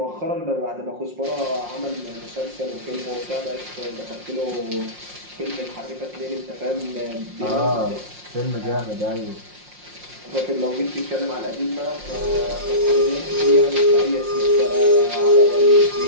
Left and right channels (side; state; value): left; late; 5.6 ms